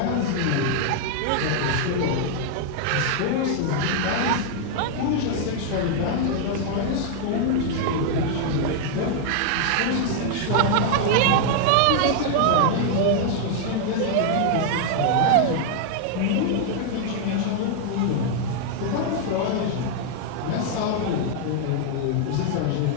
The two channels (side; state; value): both; different; correlation 0.00